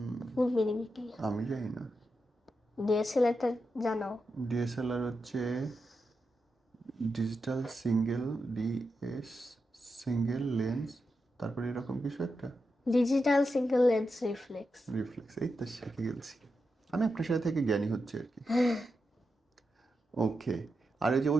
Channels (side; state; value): both; normal; correlation 0.87